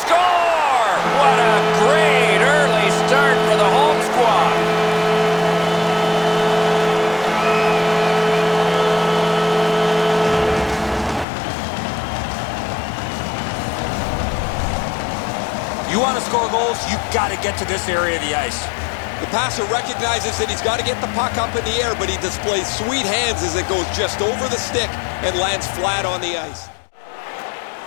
What a great early start for the home squad. You want to score goals, you've got to get to this area of the ice. The passer recognizes that he's got to get the puck up in the air, but he displays sweet hands as it goes just over the stick and lands flat on the ice.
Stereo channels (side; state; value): right; drops out; at 11.2 s